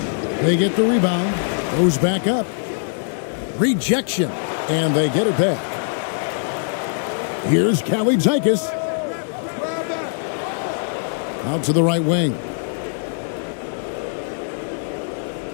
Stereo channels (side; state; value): right; silent; digital silence